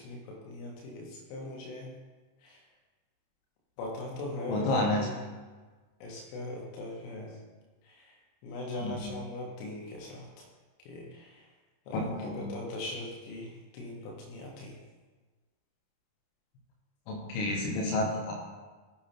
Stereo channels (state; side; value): late; right; 30 ms